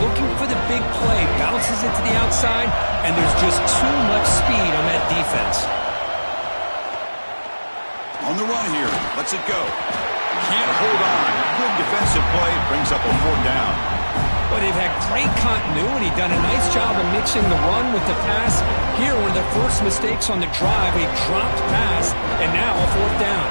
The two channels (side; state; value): both; inverted; correlation -1.00